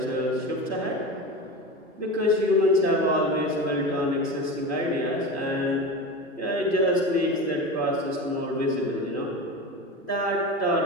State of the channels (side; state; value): both; normal; correlation 0.27